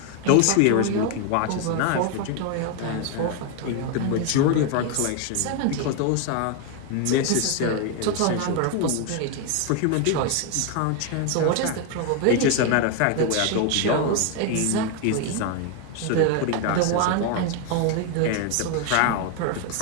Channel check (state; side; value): different; both; correlation 0.01